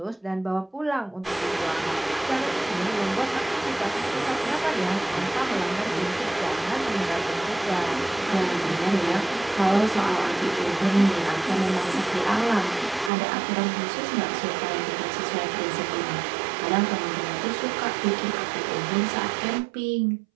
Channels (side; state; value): left; drops out; at 13.1 s